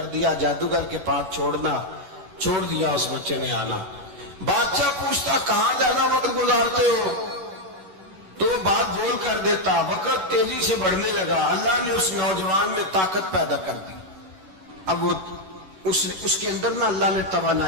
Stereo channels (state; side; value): late; left; 11 ms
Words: دیا، جادوگر کے پاس چھوڑ دیا اس بچے نے آنا۔ بادشاہ پوچھتا کہاں زیادہ وقت گزارتے ہو تو وہ بات بول کر دیتا، وقت تیزی سے بڑھنے لگا۔ اللہ نے اس نوجوان میں طاقت پیدا کر دی، اب وہ اس کے اندر نا اللہ نے